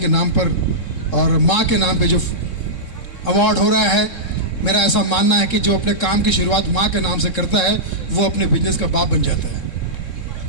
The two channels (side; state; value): right; late; 3.7 ms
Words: नाम पर और माँ के नाम पे जो अवार्ड हो रहा है, मेरा ऐसा मानना है कि जो अपने काम की शुरुआत माँ के नाम से करता है वो अपने बिजनेस का बाप बन जाता है,